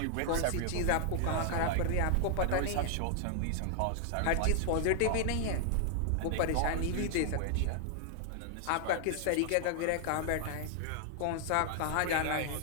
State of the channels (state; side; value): different; both; correlation 0.00